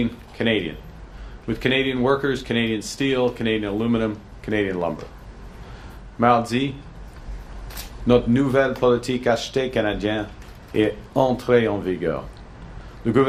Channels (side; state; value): both; identical; correlation 1.00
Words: Canadian. with Canadian workers, Canadian steel, Canadian aluminum, Canadian lumber. Mardi, notre nouvelle politique achetée canadienne est entrée en vigueur. Le